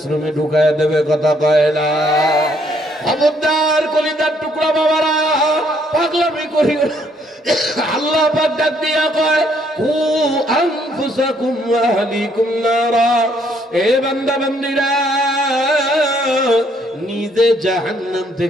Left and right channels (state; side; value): normal; both; correlation 0.68